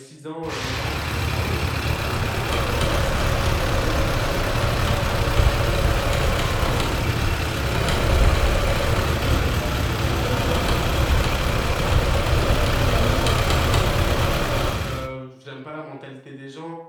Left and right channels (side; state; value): both; identical; correlation 1.00